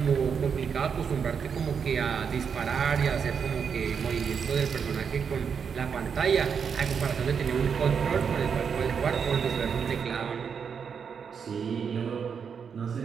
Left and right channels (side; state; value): left; quieter; 6.6 dB